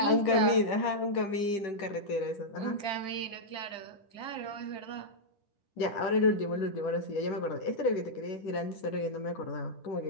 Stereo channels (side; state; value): right; late; 10 ms